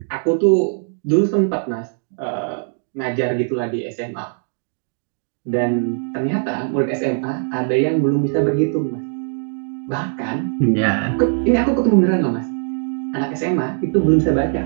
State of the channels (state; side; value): silent; left; 65 dB below the other